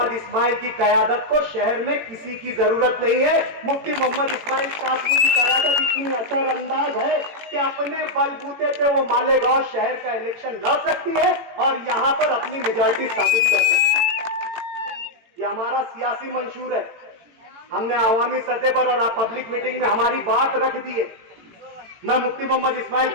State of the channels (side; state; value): left; late; 18 ms